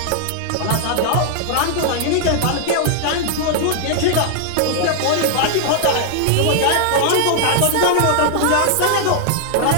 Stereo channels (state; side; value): different; both; correlation -0.01